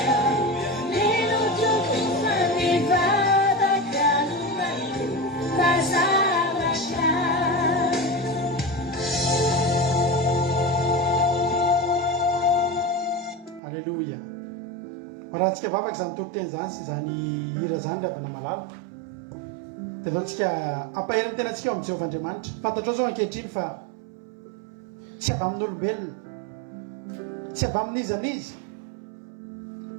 raha tsika vavaka zany tokoteny zany sy zany hira zany ry avana malala dia zao tsika ampaheriny tena tsika eo amin'ny Jehovahandriamanitra. Fantatrao zao ankehitriny fa tsy avy amin'ny olombelona, tsy avy amin'iza n'iza,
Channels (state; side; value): drops out; left; at 13.6 s